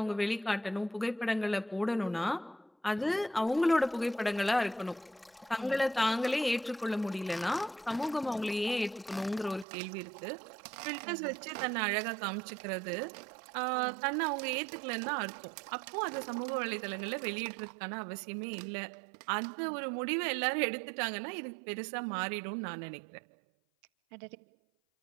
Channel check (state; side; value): drops out; left; at 9.7 s